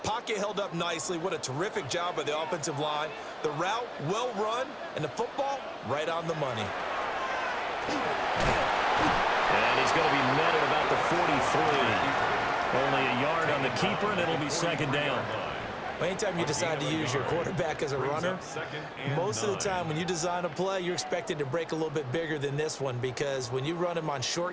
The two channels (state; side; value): identical; both; correlation 1.00